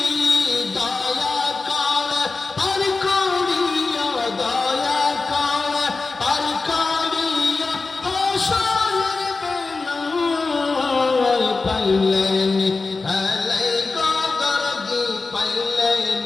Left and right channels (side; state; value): right; quieter; 3.9 dB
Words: দয়া করে পার করিয়া, দয়া করে পার করিয়া হাসরের বেলা, পাইলেন আলাই কদর দি, পাইলেন